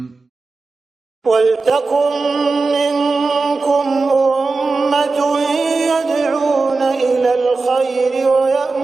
وَلْتَكُنْ مِنْكُمْ أُمَّةٌ يَدْعُونَ إِلَى الْخَيْرِ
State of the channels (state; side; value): quieter; left; 3.8 dB